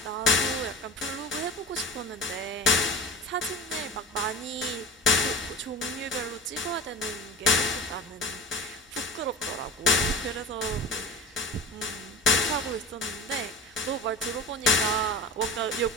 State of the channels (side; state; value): both; normal; correlation 0.35